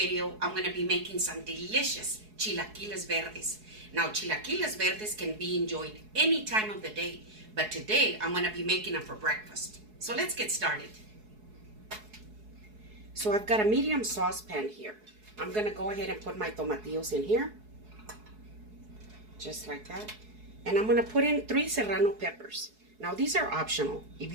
I'm going to be making some delicious chilaquiles verdes. Now chilaquiles verdes can be enjoyed any time of the day, but today I'm going to be making them for breakfast. So let's get started. So I've got a medium saucepan here. I'm going to go ahead and put my tomatillos in here, just like that. And I'm going to put in 3 serrano peppers. Now these are optional.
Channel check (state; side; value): late; left; 4.7 ms